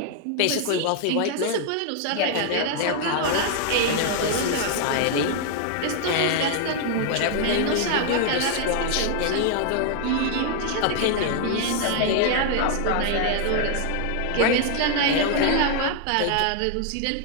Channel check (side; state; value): both; different; correlation 0.00